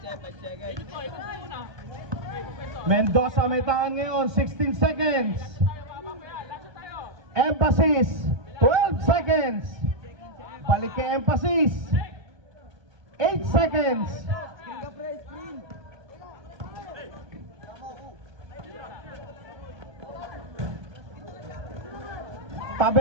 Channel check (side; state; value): left; late; 1.3 ms